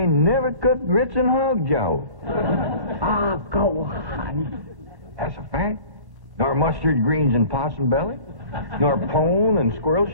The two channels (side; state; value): left; late; 1.0 ms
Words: never cooked grits and hog jowl. Ah, go on. That's a fact. Nor mustard greens and possum belly. Nor pone and squirrel